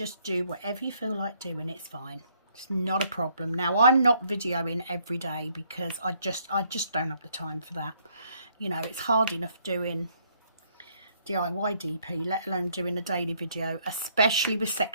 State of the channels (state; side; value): inverted; both; correlation -0.68